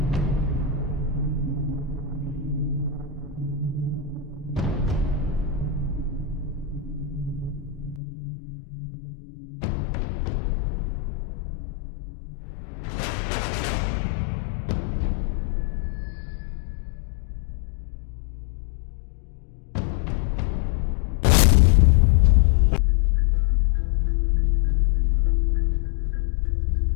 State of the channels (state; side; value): drops out; right; at 8.0 s